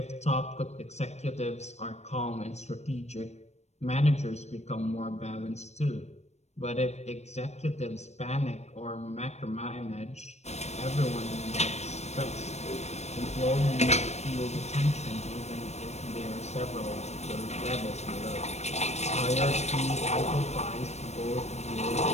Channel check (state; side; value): late; right; 0.32 ms